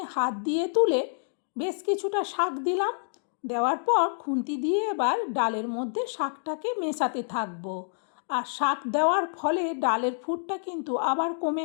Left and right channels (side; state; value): right; silent; digital silence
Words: হাত দিয়ে তুলে বেশ কিছুটা শাক দিলাম। দেওয়ার পর খুন্তি দিয়ে এবার ডালের মধ্যে শাকটাকে মেশাতে থাকবো। আর শাক দেওয়ার ফলে ডালের ফুটটা কিন্তু আবার